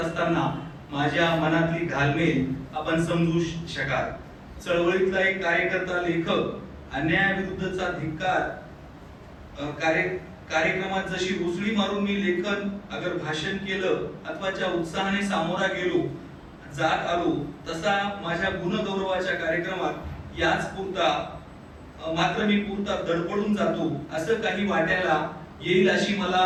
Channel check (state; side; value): identical; both; correlation 1.00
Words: असताना माझ्या मनातली घालमेल आपण समजू शकाल. चळवळीतला एक कार्यकर्ता, लेखक, अन्यायाविरुद्धचा धिक्कार कार्यक्रमात जशी उसळी मारून मी लेखन अगर भाषण केलं अथवा ज्या उत्साहाने सामोरा गेलो जात आलो, तसा माझ्या गुणगौरवाच्या कार्यक्रमात याच पुरता मात्र मी पुरता धडपडून जातो असं काही वाटायला येईल अशी मला